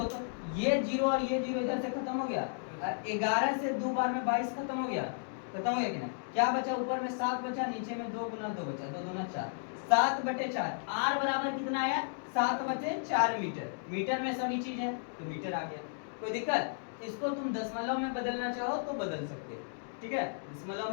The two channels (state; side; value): silent; right; digital silence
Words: तो ये जीरो और ये जीरो इधर से खत्म हो गया, 11 से 2 बार में 22 खत्म हो गया, खत्म हो गया कि नहीं। क्या बचा, ऊपर में 7 बचा, नीचे में 2 गुना 2 बचा, 2 दूना 4, 7/4। आर बराबर कितना आया, 7/4 मीटर। मीटर में सभी चीज है तो मीटर आ गया, कोई दिक्कत। इसको तुम दशमलव में बदलना चाहो तो बदल सकते, ठीक है, दशमलव